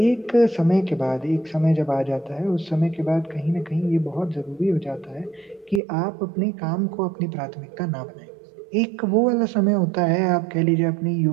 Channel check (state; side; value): drops out; left; at 5.8 s